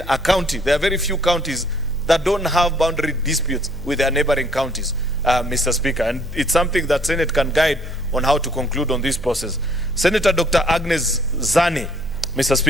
a county. There are very few counties that don't have boundary disputes with their neighboring counties, Mr. Speaker, and it's something that Senate can guide on how to conclude on this process. Senator Dr. Agnes Zani, Mr.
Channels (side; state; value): both; normal; correlation 0.63